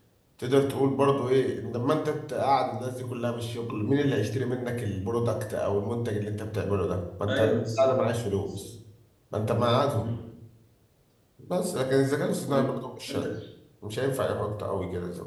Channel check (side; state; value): both; identical; correlation 1.00